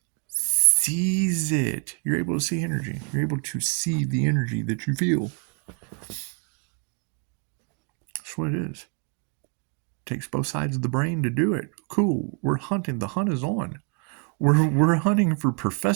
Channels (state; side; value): quieter; left; 34.3 dB